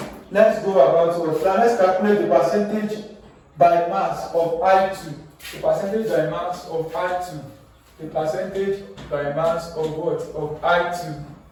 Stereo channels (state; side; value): identical; both; correlation 1.00